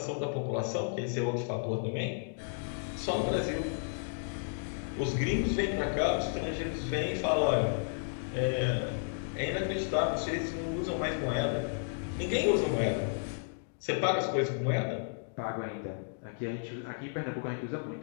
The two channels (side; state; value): right; silent; digital silence